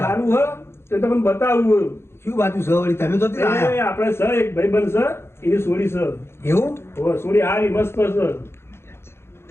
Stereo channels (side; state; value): right; late; 0.12 ms